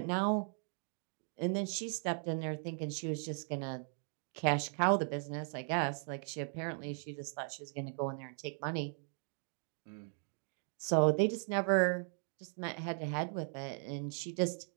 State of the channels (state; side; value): silent; left; 53 dB below the other